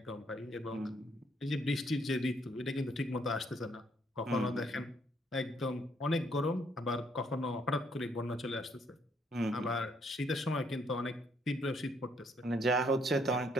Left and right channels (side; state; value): both; normal; correlation 0.69